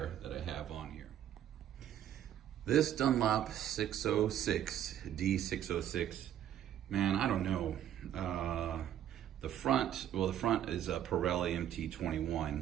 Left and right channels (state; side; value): quieter; left; 10.9 dB